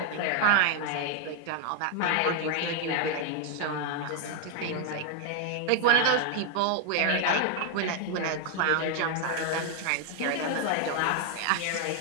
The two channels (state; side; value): different; both; correlation 0.00